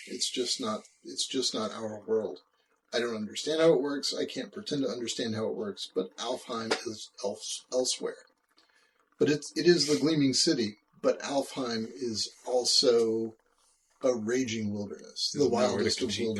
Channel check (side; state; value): both; identical; correlation 1.00